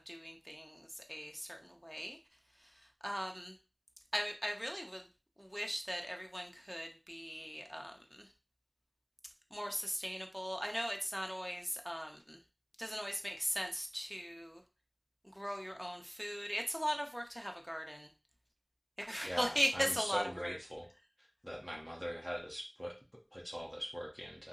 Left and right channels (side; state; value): both; identical; correlation 1.00